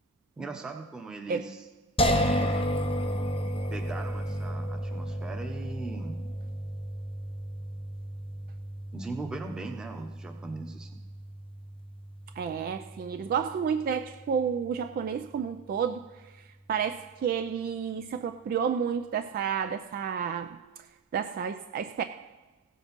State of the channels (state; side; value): quieter; left; 3.3 dB